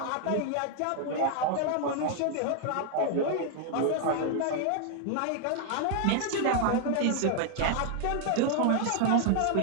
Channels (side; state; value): both; different; correlation 0.00